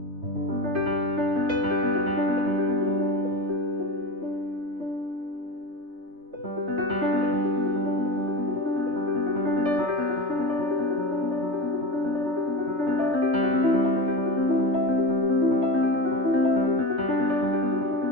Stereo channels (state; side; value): late; left; 3.3 ms